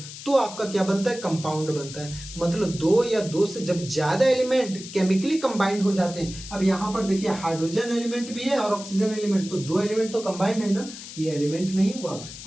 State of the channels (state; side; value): noise; left; hiss, 13 dB below the sound